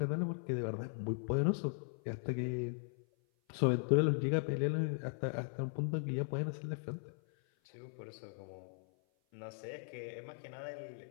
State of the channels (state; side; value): silent; right; 52 dB below the other